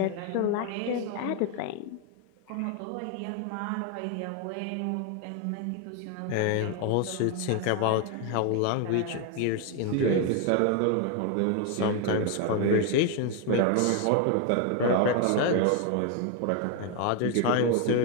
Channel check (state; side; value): different; both; correlation 0.01